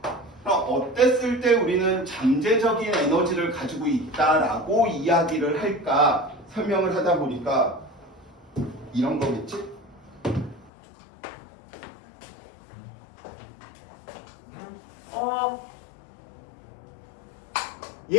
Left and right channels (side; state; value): right; drops out; at 10.7 s